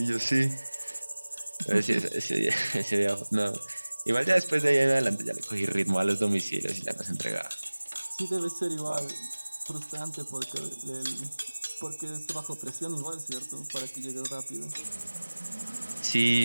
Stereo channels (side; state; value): both; inverted; correlation -1.00